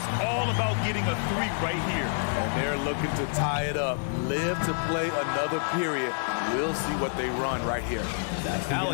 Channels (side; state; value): right; silent; digital silence